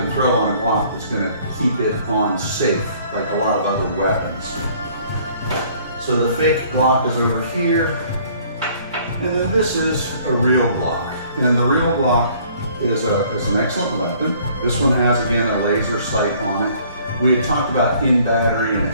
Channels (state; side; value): inverted; both; correlation -0.58